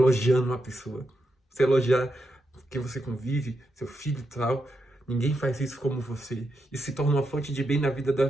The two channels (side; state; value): both; normal; correlation 0.84